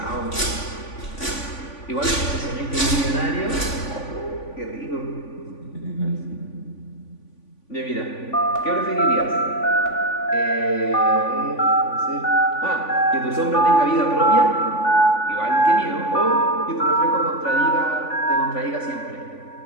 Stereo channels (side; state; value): right; late; 3.5 ms